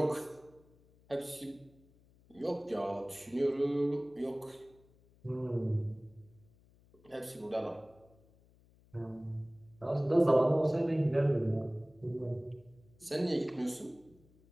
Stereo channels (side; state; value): left; noise; hum, 29 dB below the sound